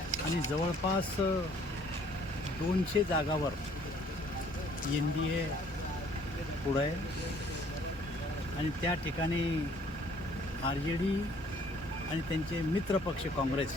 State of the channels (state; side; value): normal; both; correlation 0.59